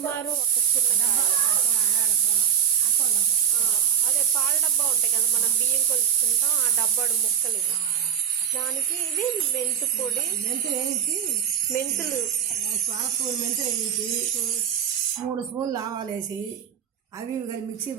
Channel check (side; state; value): left; quieter; 8.5 dB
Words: ఒక చిన్న కాయ. అదే పాల డబ్బా ఉంటాయి కదా, మనం బియ్యం కొలుచుకుంటాం, ఆ డబ్బాడు ముక్కలు ఇవి. దానికి ఇది మెంతు పొడి, మెంతులు 3 స్పూన్లు ఆవాలు వేసి అవి మిక్సీ